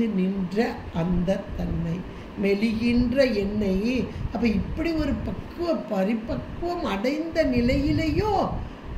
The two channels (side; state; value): both; identical; correlation 1.00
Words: நின்ற அந்த தன்மை, மெலிகின்ற எண்ணெய். அப்போ இப்படி ஒரு பரிபக்குவம் அடைந்த நிலையிலேயோ